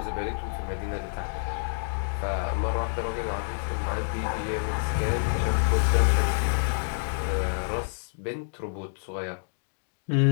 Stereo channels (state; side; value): silent; right; digital silence